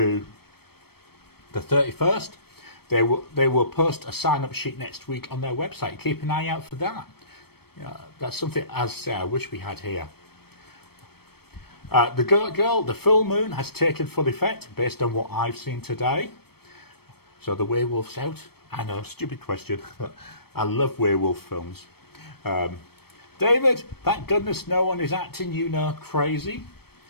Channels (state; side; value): late; right; 0.96 ms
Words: the 31st. They will post a sign-up sheet next week on their website. Keep an eye out for that. That's something, as I say, I wish we had here. The Goat Girl, the full moon has taken full effect based on what I've seen today. So the werewolf's out. I know, stupid question, but I love werewolf films. David, thank goodness no one is acting, crazy.